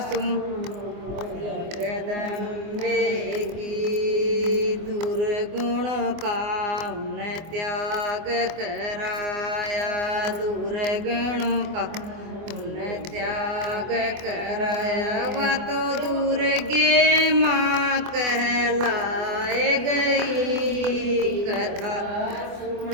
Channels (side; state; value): left; late; 24 ms